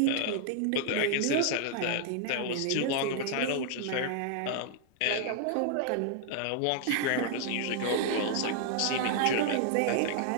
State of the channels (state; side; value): different; both; correlation 0.00